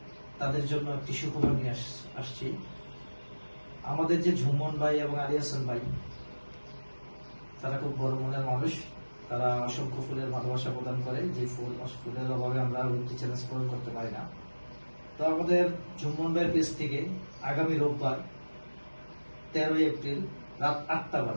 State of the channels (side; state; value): both; inverted; correlation -1.00